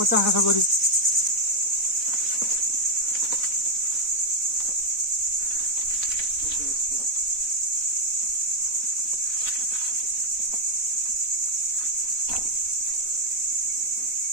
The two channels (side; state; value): left; late; 4.0 ms